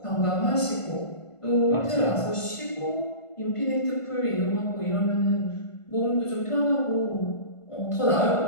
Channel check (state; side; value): late; right; 1.5 ms